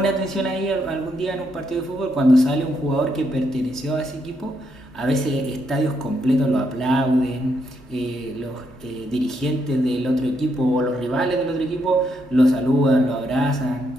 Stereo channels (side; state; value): both; normal; correlation 0.77